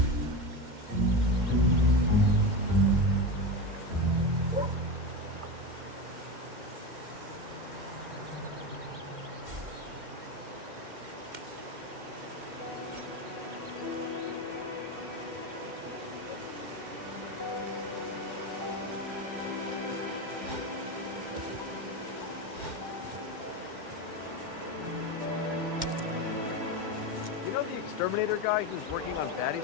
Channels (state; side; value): late; left; 2.1 ms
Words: Exterminator guy who's working on